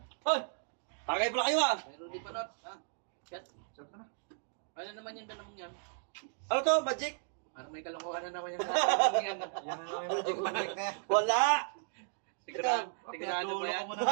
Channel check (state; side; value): silent; left; digital silence